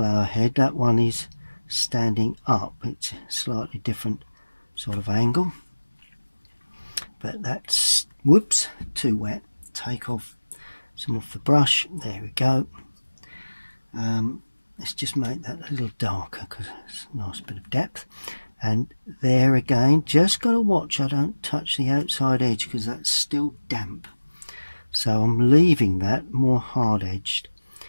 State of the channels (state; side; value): inverted; both; correlation -1.00